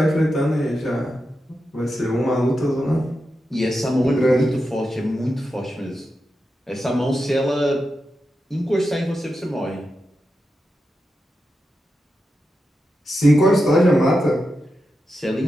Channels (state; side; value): normal; both; correlation 0.89